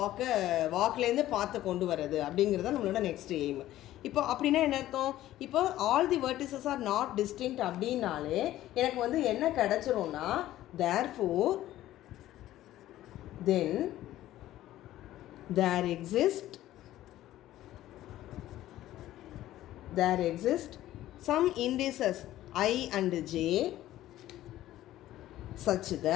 வாக்லேருந்து பார்த்து கொண்டு வரது அப்படிங்கிறது நம்மளோட நெக்ஸ்ட் எய்ம். இப்போ அப்படின்னா என்ன அர்த்தம்? இப்போ all the vertices are not distinct அப்படின்னாலே எனக்கு வந்து என்ன கிடச்சிரும்னா, therefore then there exist some indices I and j such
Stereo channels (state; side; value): quieter; right; 14.2 dB